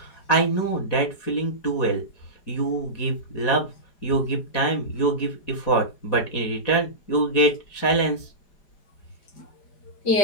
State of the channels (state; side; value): late; right; 4.8 ms